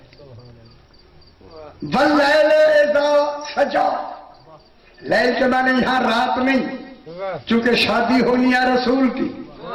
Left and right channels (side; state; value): both; identical; correlation 1.00